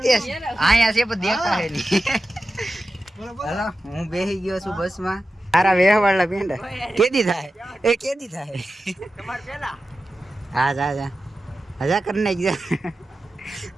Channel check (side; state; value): both; normal; correlation 0.93